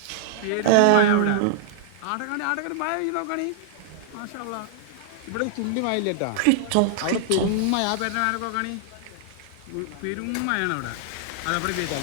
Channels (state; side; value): different; both; correlation -0.01